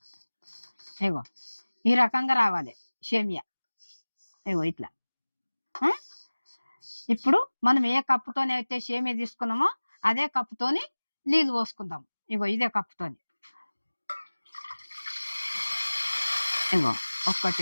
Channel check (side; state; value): both; inverted; correlation -1.00